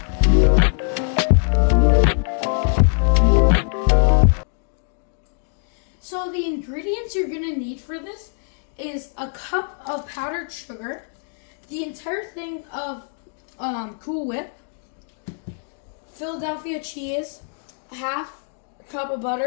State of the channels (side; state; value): right; silent; digital silence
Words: So the ingredients you're going to need for this is a cup of powdered sugar, the entire thing of Cool Whip, Philadelphia cheese, a half cup of